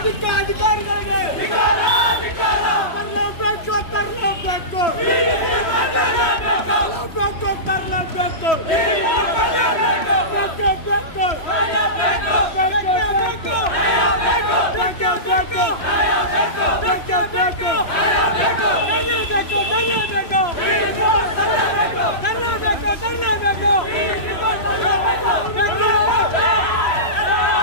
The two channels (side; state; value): right; late; 3.0 ms